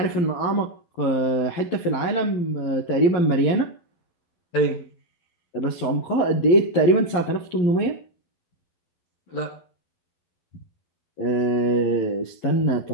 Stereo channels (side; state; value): right; late; 11 ms